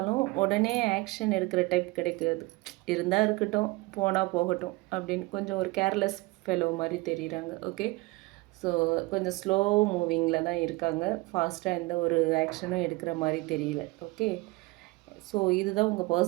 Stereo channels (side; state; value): left; quieter; 22.8 dB